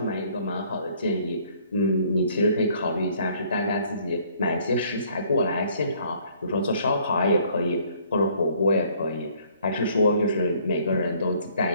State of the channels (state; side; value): inverted; both; correlation -0.61